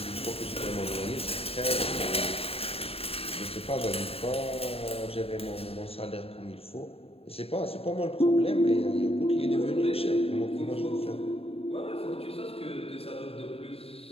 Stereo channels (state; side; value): late; right; 0.28 ms